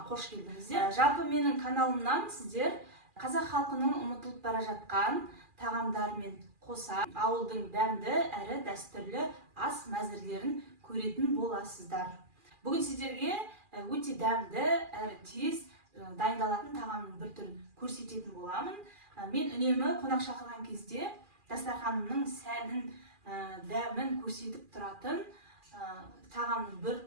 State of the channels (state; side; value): late; left; 2.4 ms